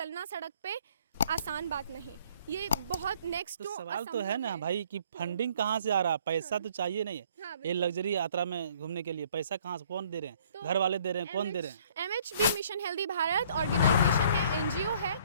सड़क पे आसान बात नहीं, ये बहुत नेक्स्ट तो टू सवाल तो है ना भाई कि फंडिंग कहाँ से आ रहा है? पैसा तो चाहिए नहीं है, हाँ, ये लग्जरी यात्रा में घूमने के लिए पैसा कहाँ से, कौन दे रहे हैं? तो घर वाले दे रहे हैं, कौन दे रहे हैं? MHB mission healthy Bharat organisation है, NGO है,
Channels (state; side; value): inverted; both; correlation -0.60